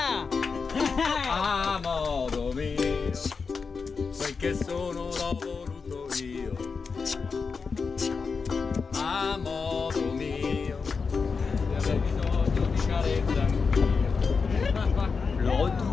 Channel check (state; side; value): quieter; right; 5.1 dB